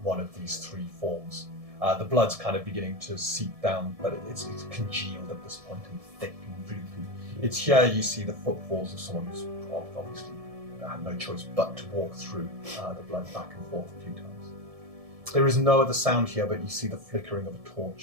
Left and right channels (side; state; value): left; late; 1.7 ms